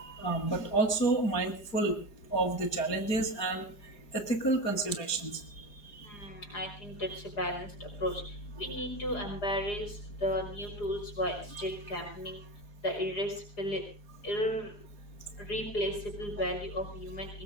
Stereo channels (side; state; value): right; late; 4.8 ms